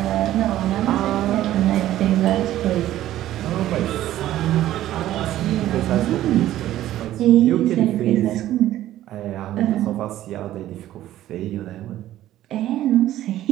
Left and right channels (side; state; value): left; quieter; 13.6 dB